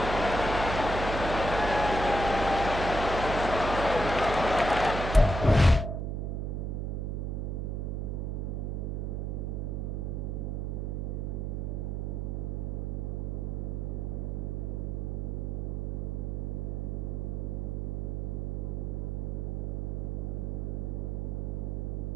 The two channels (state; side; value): noise; right; hum, 1 dB below the sound